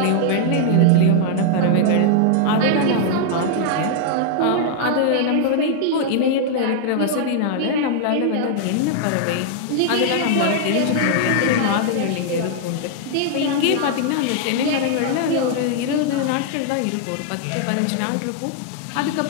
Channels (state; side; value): different; both; correlation -0.01